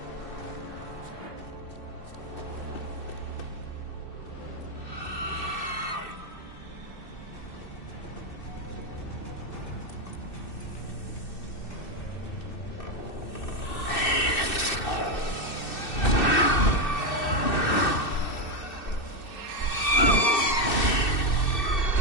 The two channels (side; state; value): right; late; 2.6 ms